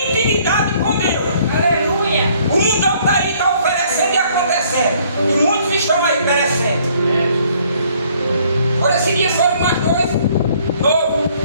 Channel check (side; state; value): both; inverted; correlation -0.62